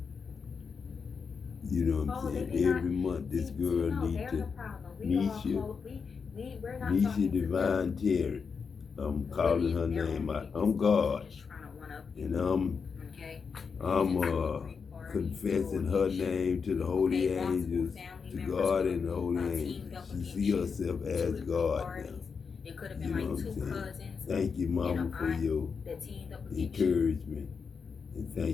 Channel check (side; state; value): right; quieter; 5.6 dB